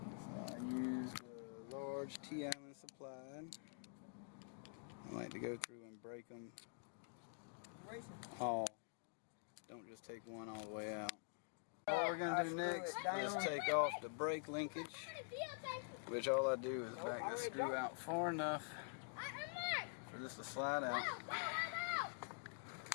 So I use the large T. Allen supplied. I like to go through and break them all. Don't just take one all the way out. What we're going to do next is take off the brake linkage, which all I do is back the screw out far enough for this to slide out.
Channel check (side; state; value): right; silent; digital silence